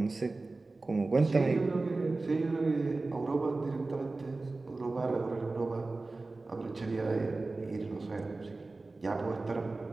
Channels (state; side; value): quieter; left; 3.4 dB